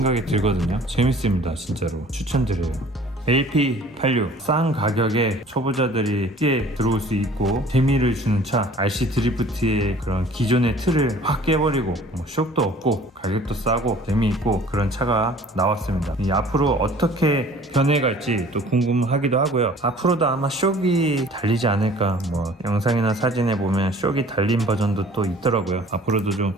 들거든요. 재밌습니다. 진짜로 추천드려요. LP86 싼 가격에 초보자들이 쉽게 들어올 수 있고 재미를 주는 차 RC 드리프트의 그런 기존의 틀을 확 깨버리고 쇼크도 없고 가격도 싸고 재미있고 그런 차가 나왔습니다. 앞으로 어떻게 변해갈지 또 궁금하기도 하고요. 앞으로도 아마 쇼기 달리지 않을까 뭐 영상이나 사진에 보면 쇼기 달린 버전도 또 있더라고요. 앞으로도 좀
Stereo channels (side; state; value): both; normal; correlation 0.50